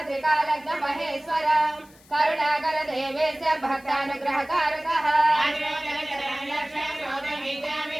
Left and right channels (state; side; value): noise; left; hiss, 27 dB below the sound